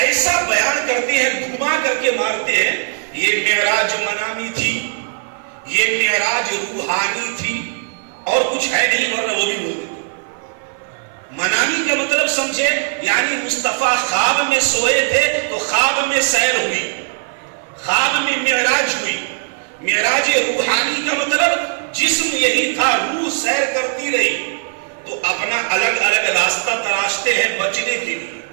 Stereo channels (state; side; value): silent; left; 55 dB below the other